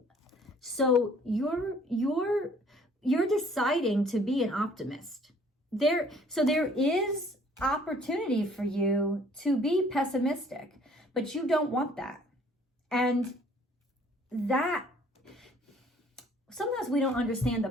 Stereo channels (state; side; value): normal; both; correlation 0.57